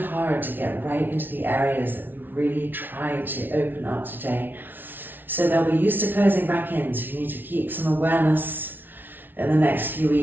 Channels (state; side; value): late; left; 0.094 ms